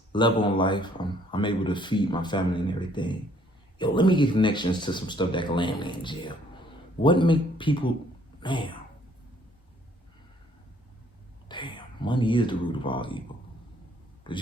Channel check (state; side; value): normal; both; correlation 0.63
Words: level in life, I'm able to feed my family and everything. Yo, let me get connections to some stuff that can land me in jail. What make people, damn, money is the root of all evil. Because